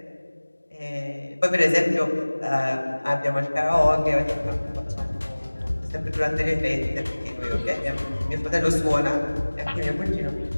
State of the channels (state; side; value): inverted; both; correlation -1.00